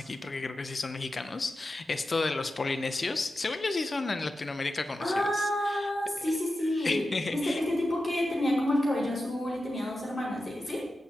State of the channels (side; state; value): both; normal; correlation 0.91